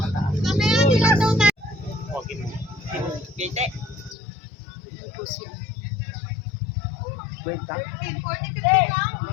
Gate. Yan po sila.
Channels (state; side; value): drops out; right; at 4.2 s